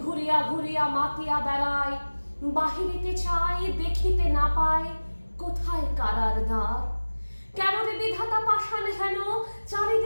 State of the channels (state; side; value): inverted; both; correlation -1.00